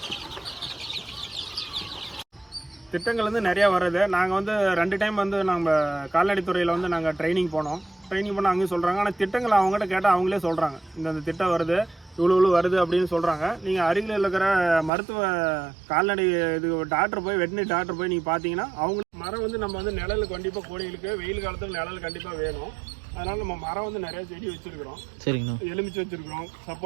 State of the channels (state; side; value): drops out; left; at 14.9 s